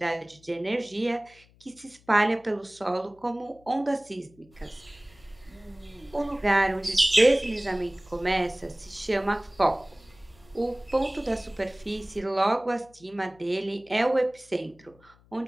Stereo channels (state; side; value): noise; left; hum, 28 dB below the sound